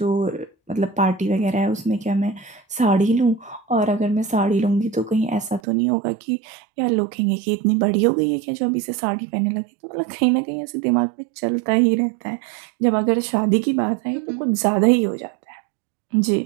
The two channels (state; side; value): drops out; left; at 5.6 s